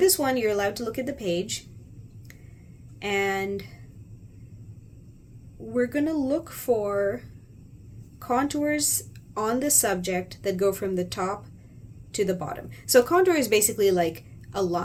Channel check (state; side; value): identical; both; correlation 1.00